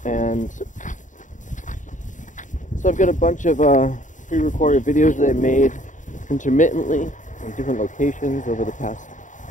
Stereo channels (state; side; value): late; right; 0.36 ms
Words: And so I've got a bunch of pre-recorded videos that I made intermittently in different locations over the past